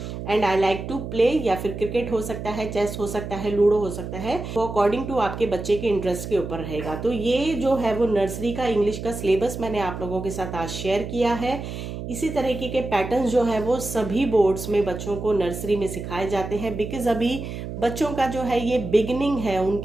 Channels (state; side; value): noise; right; hum, 7 dB below the sound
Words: And I like to play, या फिर क्रिकेट हो सकता है, चेस हो सकता है, लूडो हो सकता है, वो अकॉर्डिंग टू आपके बच्चे के इंटरेस्ट के ऊपर रहेगा। तो ये जो है वो नर्सरी का इंग्लिश का सिलेबस मैंने आप लोगों के साथ आज शेयर किया है। इसी तरीके के पैटर्न्स जो है वो सभी बोर्ड्स में बच्चों को नर्सरी में सिखाए जाते हैं, बिकॉज अभी बच्चों का जो है ये बिगिनिंग है,